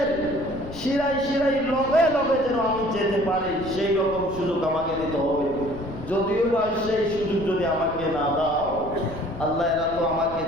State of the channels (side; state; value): left; noise; rumble, 14 dB below the sound